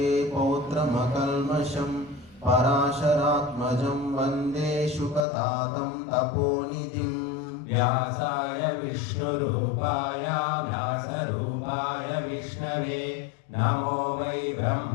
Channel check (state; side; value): drops out; right; at 5.2 s